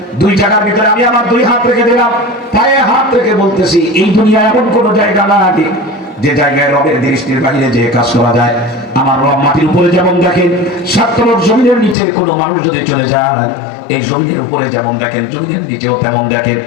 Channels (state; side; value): drops out; right; at 12.0 s